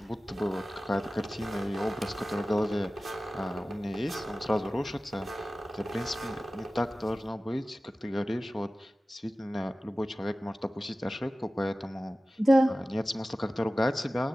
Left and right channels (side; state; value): both; normal; correlation 0.96